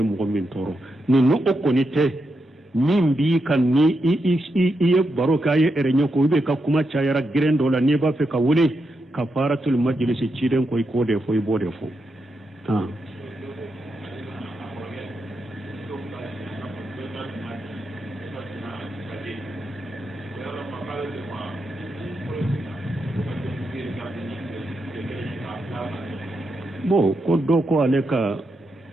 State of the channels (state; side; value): normal; both; correlation 0.84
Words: min tɔɔrɔ nin o kɔni tɛ min b'i kan ni i ye baro kɛ a ye ɛrɛɲɛ ko i ka kuma cayara gɛrɛn dɔ la n'i b'a fɛ ka wele kafaratul majlis ciden ko i k'o de fɔ i b'o de fɔ bon ko dɔ ko ale ka